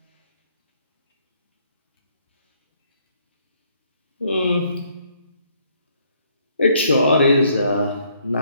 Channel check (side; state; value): both; inverted; correlation -0.68